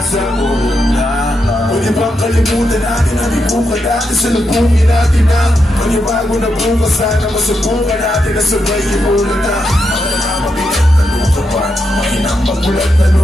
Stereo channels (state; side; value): normal; both; correlation 0.84